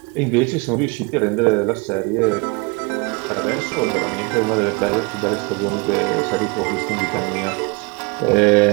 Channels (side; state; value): left; quieter; 29.1 dB